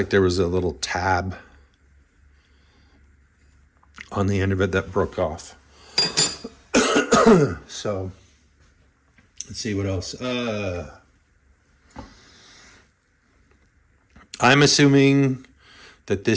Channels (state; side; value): identical; both; correlation 1.00